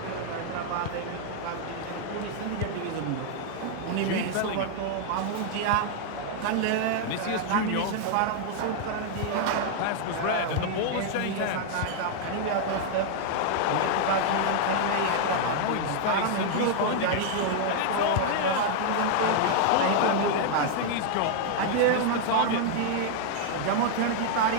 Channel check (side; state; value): both; different; correlation 0.00